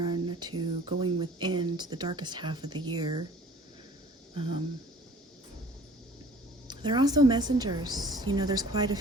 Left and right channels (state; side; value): normal; both; correlation 0.49